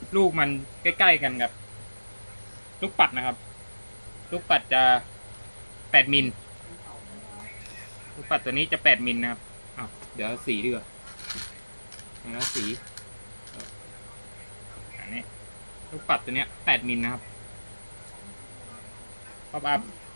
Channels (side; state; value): both; inverted; correlation -1.00